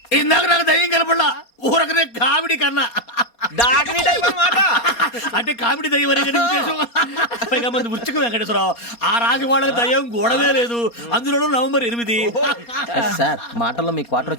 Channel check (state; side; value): late; right; 4.3 ms